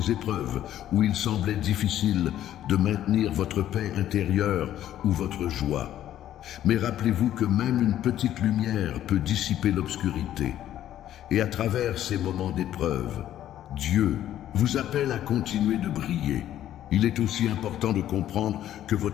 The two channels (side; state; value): right; quieter; 11.9 dB